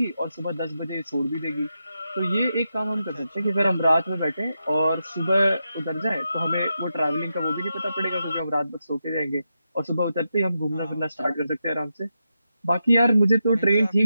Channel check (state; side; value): inverted; both; correlation -0.87